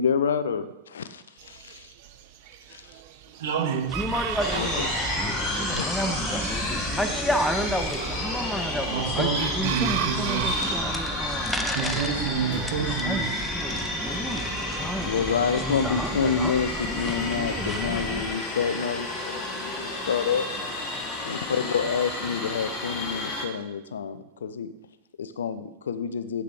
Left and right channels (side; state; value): both; normal; correlation -0.04